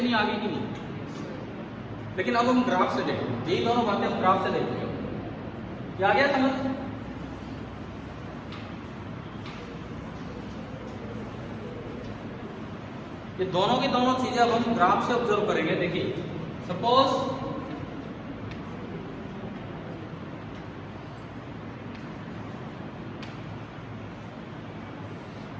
आ गई कि नहीं? लेकिन अब हम ग्राफ से देखेंगे, यही दोनों बातें हम ग्राफ से देखेंगे। क्या आ गया समझ? ये दोनों की दोनों चीजें अब हम ग्राफ से ऑब्जर्व करेंगे। देखिए सपोज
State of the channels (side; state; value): both; identical; correlation 1.00